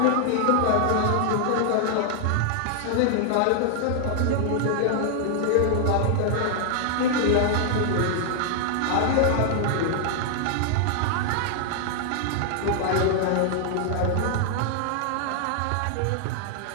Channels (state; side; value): different; both; correlation 0.00